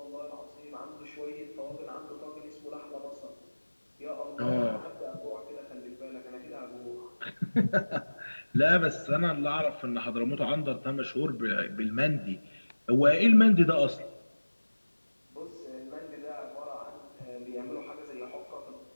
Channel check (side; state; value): both; inverted; correlation -1.00